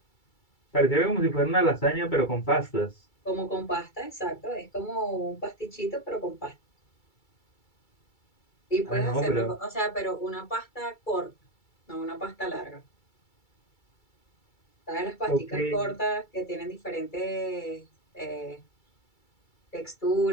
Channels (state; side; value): late; right; 2.3 ms